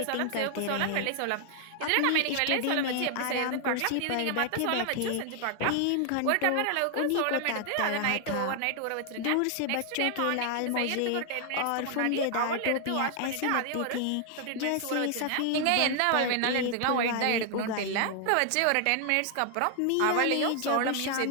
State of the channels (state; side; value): different; both; correlation 0.00